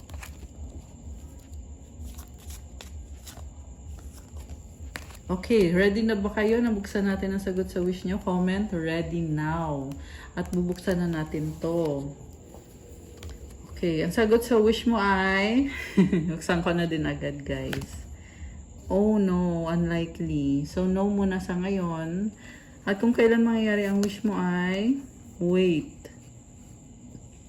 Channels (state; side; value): identical; both; correlation 1.00